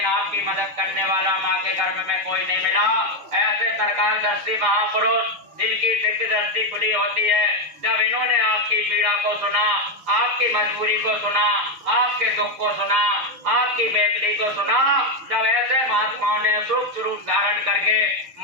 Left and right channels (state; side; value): late; left; 6.9 ms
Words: आपकी मदद करने वाला माँ के गर्भ में कोई नहीं मिला। ऐसे सरकार दृष्टि महापुरुष जिनकी दिव्य दृष्टि खुली होती है, जब इन्होंने आपकी पीड़ा को सुना, आपकी मजबूरी को सुना, आपके दुख को सुना, आपकी बेदली को सुना, जब ऐसे महात्माओं ने सूक्ष्म रूप धारण करके